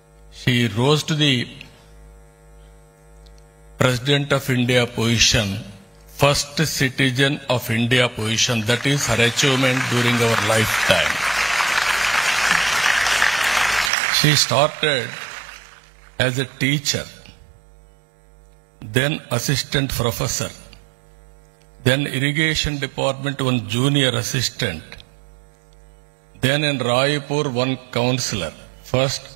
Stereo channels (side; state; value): left; drops out; at 13.9 s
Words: she rose to the President of India position, first citizen of India position. That is her achievement during our lifetime. She started as a teacher, then assistant professor, then irrigation department one junior assistant, then in Raipur one counselor. First